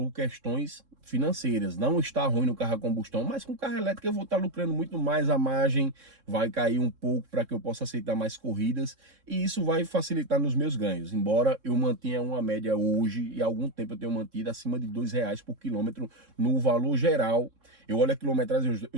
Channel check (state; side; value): late; left; 3.7 ms